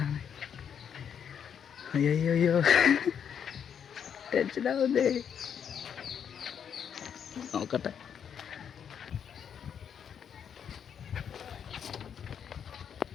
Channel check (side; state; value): right; quieter; 8.0 dB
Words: അയ്യോ ടെൻഷനാവുന്നേ. നോക്കട്ടെ.